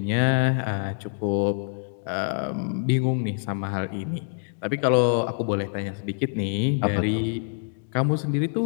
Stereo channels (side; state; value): right; silent; digital silence